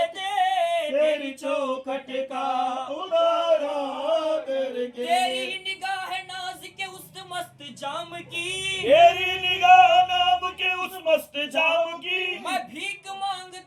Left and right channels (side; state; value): both; identical; correlation 1.00